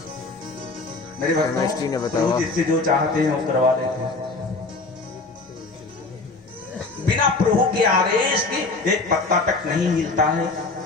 मेरे केमिस्ट्री ने बताया, प्रभु जिससे जो चाहते हैं वो करवा लेते हैं। बिना प्रभु के आदेश के एक पत्ता तक नहीं हिलता है।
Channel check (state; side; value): quieter; right; 3.6 dB